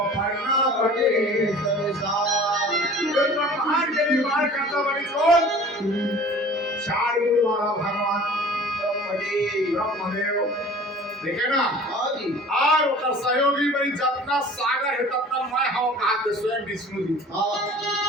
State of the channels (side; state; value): both; normal; correlation 0.45